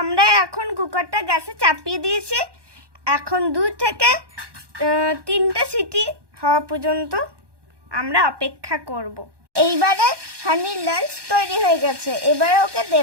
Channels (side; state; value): left; late; 1.2 ms